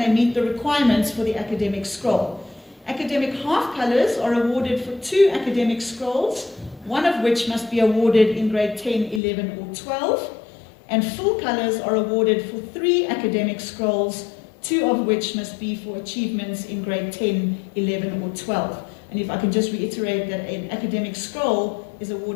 they meet the requirements for the academic scroll. Academic half colours are awarded for 2 academic scrolls, one of which must be awarded in grade 10, 11 or 12, and full colours are awarded for 3 academic scrolls, 2 of which must be for achievements in grade 10, 11 or 12. And if I can just reiterate that an academic scroll is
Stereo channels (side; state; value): right; drops out; at 9.2 s